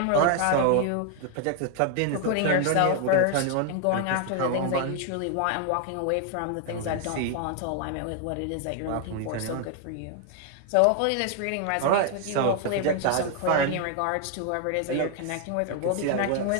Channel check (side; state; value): both; different; correlation 0.00